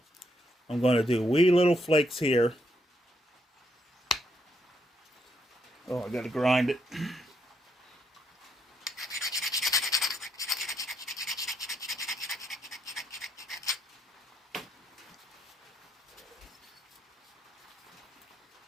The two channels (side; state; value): both; normal; correlation 0.77